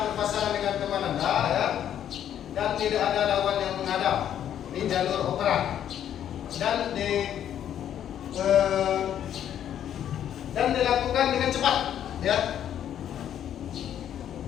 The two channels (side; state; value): right; quieter; 10.2 dB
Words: berpasangan dengan teman Anda, ya, dan tidak ada lawan yang menghadap di jalur operan dan dilakukan dengan cepat, ya.